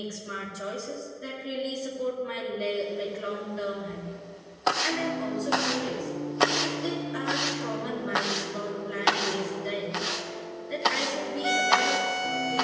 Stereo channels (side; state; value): both; identical; correlation 1.00